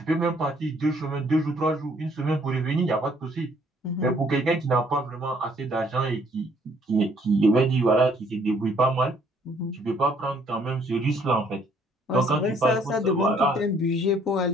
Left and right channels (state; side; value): normal; both; correlation 0.64